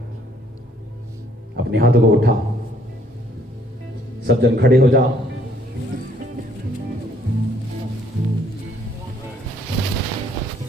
अपने हाथों को उठाओ, सब जन खड़े हो जाओ।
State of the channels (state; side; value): normal; both; correlation 0.64